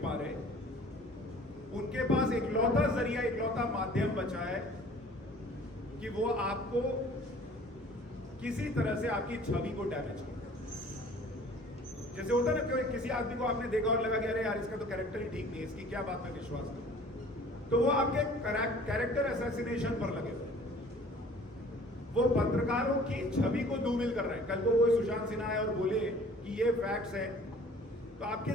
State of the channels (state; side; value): normal; both; correlation 0.50